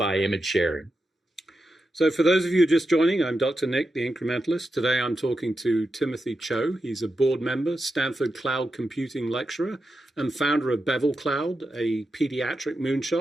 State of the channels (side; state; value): both; normal; correlation 0.88